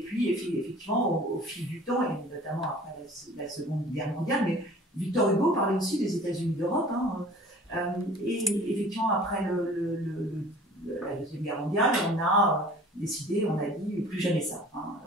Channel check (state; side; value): normal; both; correlation 0.47